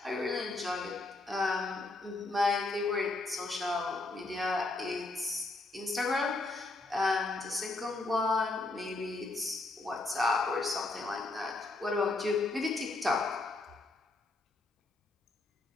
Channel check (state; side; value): quieter; right; 3.1 dB